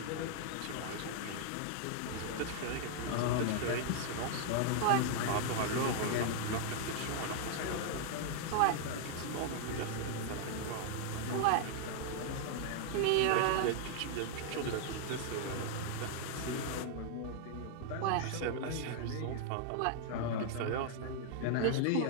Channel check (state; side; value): different; both; correlation 0.00